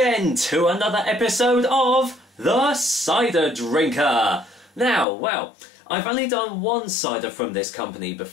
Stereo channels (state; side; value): drops out; right; at 5.1 s